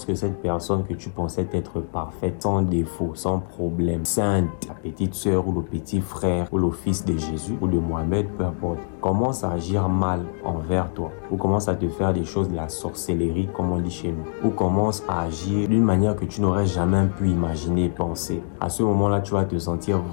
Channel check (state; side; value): silent; right; digital silence